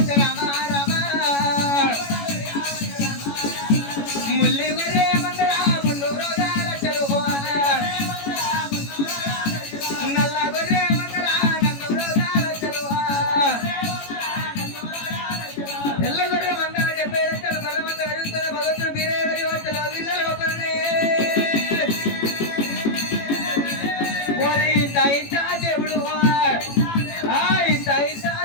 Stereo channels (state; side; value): late; right; 18 ms